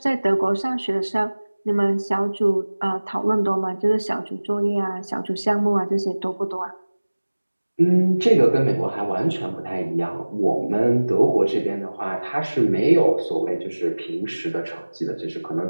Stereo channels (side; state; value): both; inverted; correlation -1.00